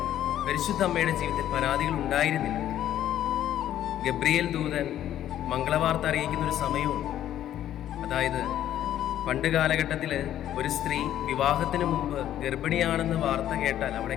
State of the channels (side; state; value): right; quieter; 11.7 dB